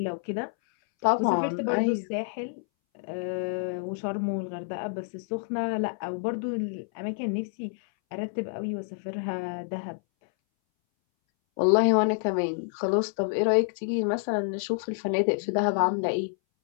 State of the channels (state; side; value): silent; right; 59 dB below the other